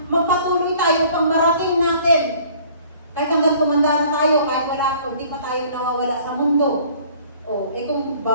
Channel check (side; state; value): both; inverted; correlation -0.54